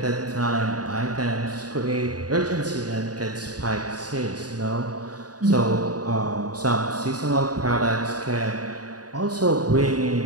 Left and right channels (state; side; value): late; left; 0.68 ms